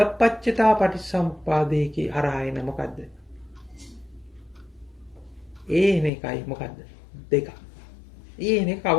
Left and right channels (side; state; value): right; drops out; at 6.1 s